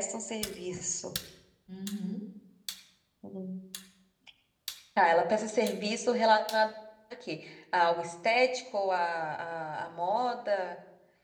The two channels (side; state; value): both; identical; correlation 1.00